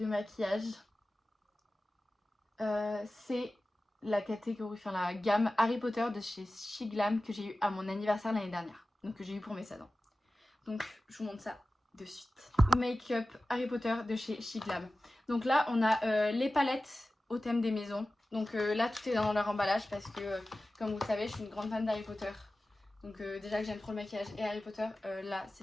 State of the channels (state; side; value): normal; both; correlation 0.95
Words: maquillage. C'est la catégorie, enfin la gamme Harry Potter de chez She Glam que j'ai eu à mon anniversaire l'année dernière. Donc que j'ai eu pour mes 16 ans. Donc je vous montre ça de suite. Make-up Harry Potter de chez She Glam. Donc là on a les palettes au thème des maisons. Donc là tout est dans leur emballage parce que comme vous le savez je suis une grande fan d'Harry Potter. Donc déjà que j'aime trop le maquillage et Harry Potter, là